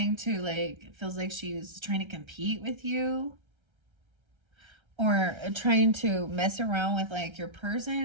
to feels like she's trying to compete with you, or trying to mess around with your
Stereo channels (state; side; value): late; left; 1.3 ms